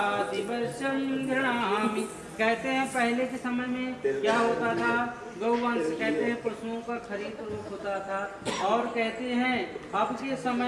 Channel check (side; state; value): both; identical; correlation 1.00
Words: वर्षम गृह्णामि, कहते हैं पहले के समय में क्या होता था? गौवंश, कहते हैं पशुओं का खरीद रूप होता था, और कहते हैं अब के